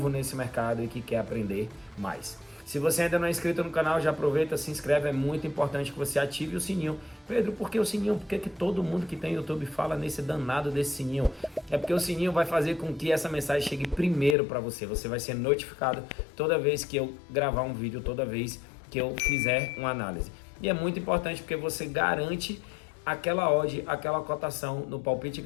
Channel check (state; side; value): drops out; right; at 14.4 s